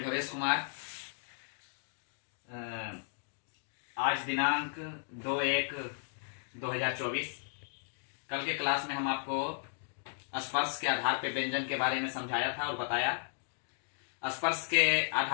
भवेश कुमार। आज दिनांक 2/1/2024। कल के क्लास में हम आपको स्पर्श के आधार पे व्यंजन के बारे में समझाया था और बताया। स्पर्श के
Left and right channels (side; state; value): right; silent; digital silence